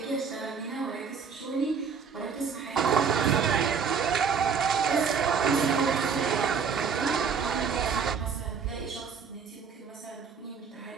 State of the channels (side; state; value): left; quieter; 6.2 dB